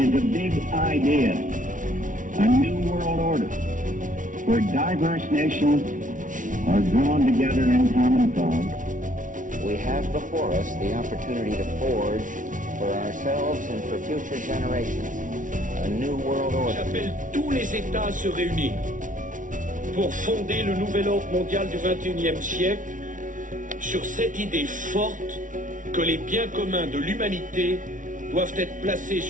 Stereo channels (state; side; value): late; left; 0.38 ms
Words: a big idea, a new world order, where diverse nations are drawn together in common cause. We have before us the opportunity to forge for ourselves and for future generations a new world order. J'appelle tous les États à se réunir pour fonder le nouvel ordre mondial du XXIe siècle sur cette idée forte que les biens communs de l'humanité doivent être placés